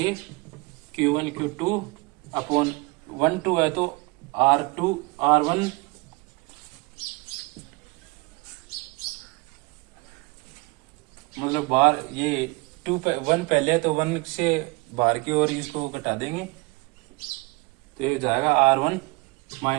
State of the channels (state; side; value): quieter; left; 26.1 dB